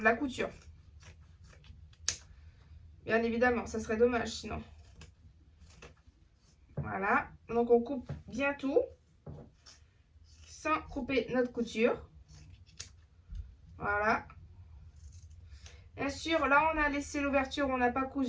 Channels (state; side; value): identical; both; correlation 1.00